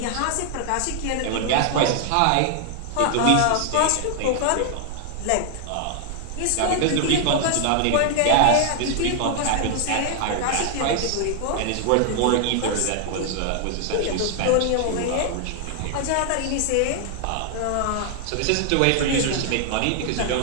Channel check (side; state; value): both; different; correlation 0.00